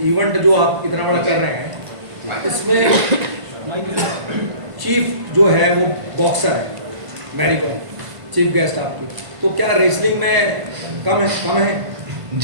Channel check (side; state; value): left; late; 1.5 ms